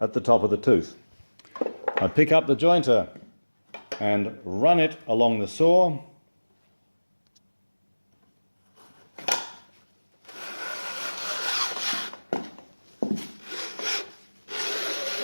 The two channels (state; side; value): inverted; both; correlation -1.00